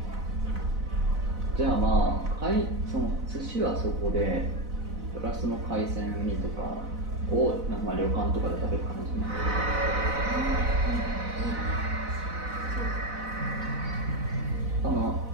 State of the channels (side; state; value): left; late; 4.0 ms